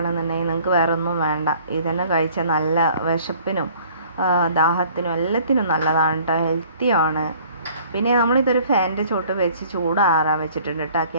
നിങ്ങൾക്ക് വേറെ ഒന്നും വേണ്ട. ഇതന്നെ കഴിച്ചാൽ നല്ല വിശപ്പിനും ദാഹത്തിനും എല്ലാത്തിനും നല്ലതാണ് കേട്ടോ, ഹെൽത്തിയാണ്. പിന്നെ നമ്മളിതൊരു ഫാനിൻ്റെ ചോട്ട് വെച്ച് ചൂടാറാൻ വെച്ചിട്ടുണ്ട് കേട്ടോ.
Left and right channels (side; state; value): both; inverted; correlation -0.54